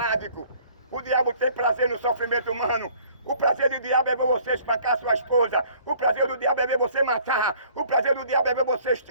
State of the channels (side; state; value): both; inverted; correlation -0.56